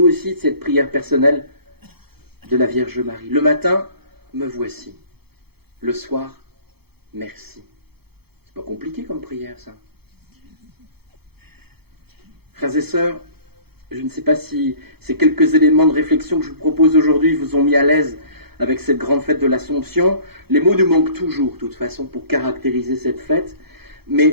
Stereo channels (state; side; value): late; left; 0.96 ms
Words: aussi, de cette prière personnelle de la Vierge Marie. Le matin, me voici. Le soir, merci. C'est pas compliqué comme prière, ça. Frères et sœurs, je ne sais pas si ces quelques éléments de réflexion que je vous propose aujourd'hui vous ont mis à l'aise avec cette grande fête de l'Assomption. Les mots nous manquent toujours, de toute façon, pour caractériser cette fête.